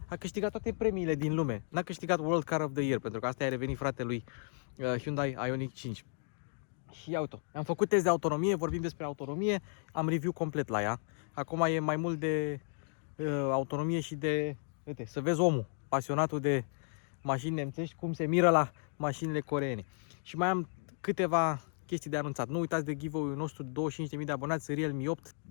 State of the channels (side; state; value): right; silent; 55 dB below the other